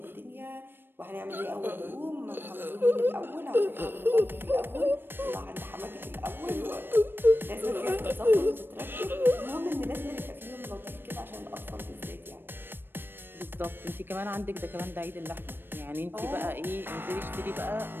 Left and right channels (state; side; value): late; left; 0.097 ms